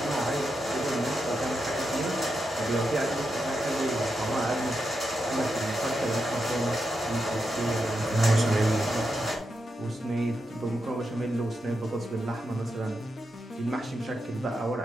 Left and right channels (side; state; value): both; normal; correlation 0.86